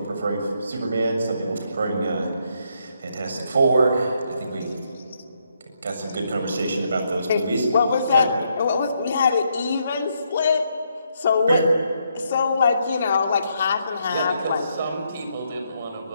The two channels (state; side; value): inverted; both; correlation -0.76